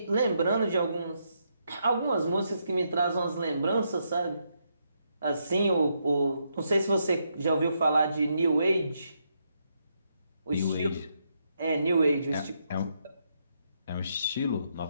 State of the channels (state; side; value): inverted; both; correlation -0.79